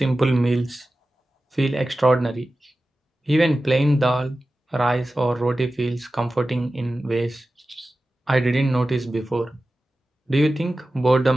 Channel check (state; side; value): normal; both; correlation 0.95